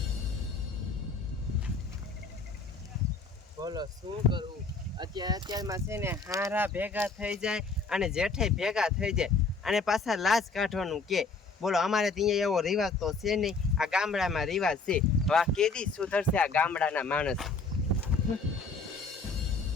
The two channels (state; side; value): quieter; right; 4.1 dB